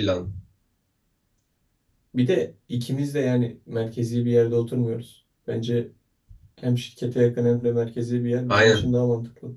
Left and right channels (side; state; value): both; identical; correlation 1.00